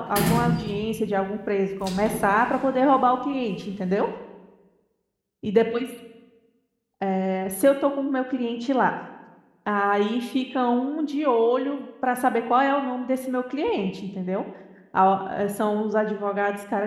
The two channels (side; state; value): both; identical; correlation 1.00